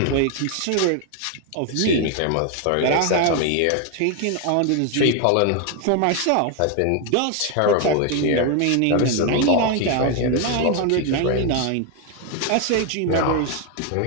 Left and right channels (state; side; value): different; both; correlation 0.01